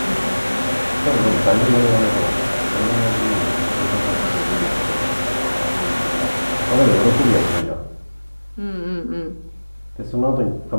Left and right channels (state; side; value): inverted; both; correlation -1.00